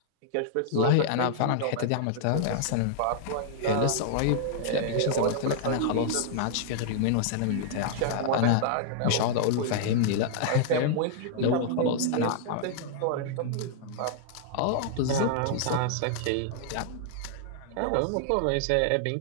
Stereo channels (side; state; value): both; different; correlation -0.01